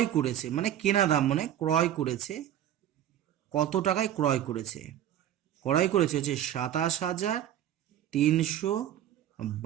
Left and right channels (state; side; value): quieter; left; 11.3 dB